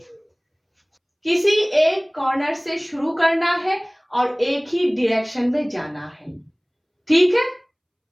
किसी एक कॉर्नर से शुरू करना है और एक ही डायरेक्शन में जाना है। ठीक है,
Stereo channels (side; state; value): both; identical; correlation 1.00